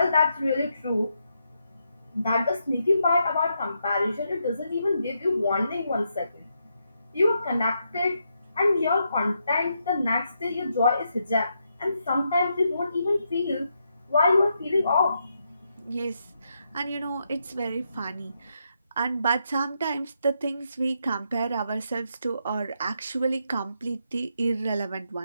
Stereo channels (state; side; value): inverted; both; correlation -0.81